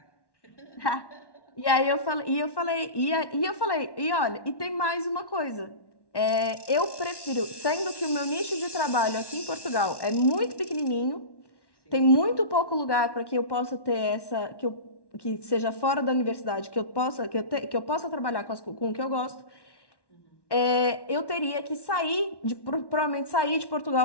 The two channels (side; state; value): right; late; 1.1 ms